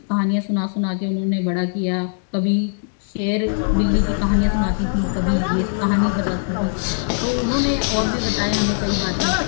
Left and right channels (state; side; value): silent; right; digital silence